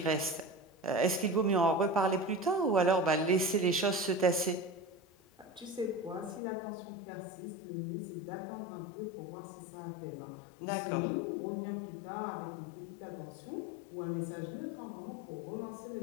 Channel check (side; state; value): right; drops out; at 6.4 s